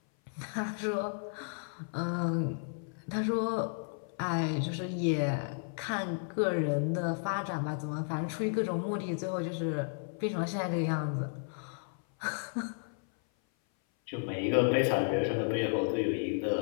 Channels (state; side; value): silent; right; 56 dB below the other